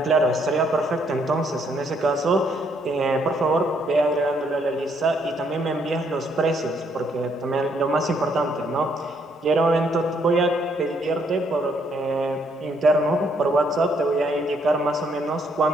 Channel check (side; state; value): both; normal; correlation 0.70